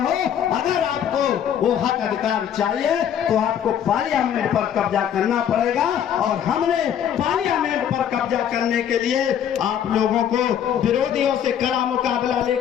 अगर आपको वो हक अधिकार चाहिए तो आपको पार्लियामेंट पर कब्जा करना पड़ेगा। और हमने पार्लियामेंट पर कब्जा करने के लिए आप लोगों को विरोधियों से कड़ा मुकाबला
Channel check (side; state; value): right; quieter; 9.3 dB